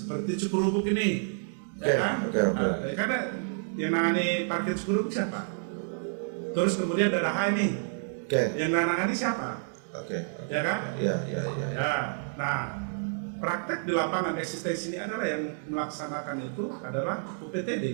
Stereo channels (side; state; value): left; silent; digital silence